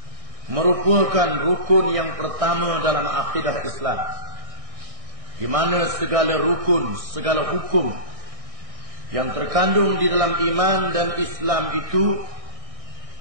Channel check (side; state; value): left; late; 1.6 ms